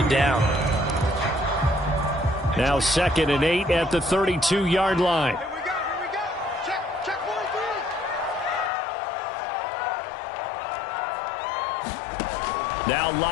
it down. Now 2nd and 8 at the 32-yard line. Now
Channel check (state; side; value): drops out; right; at 8.7 s